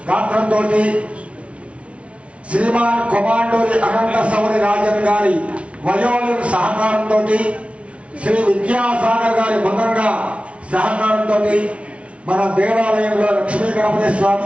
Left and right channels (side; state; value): left; late; 0.062 ms